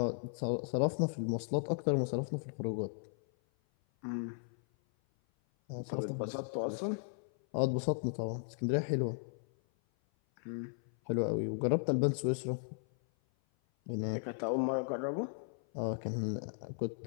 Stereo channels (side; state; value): right; silent; 54 dB below the other